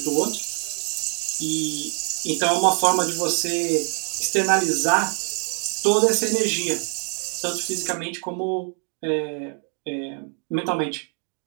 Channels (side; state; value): left; quieter; 37.4 dB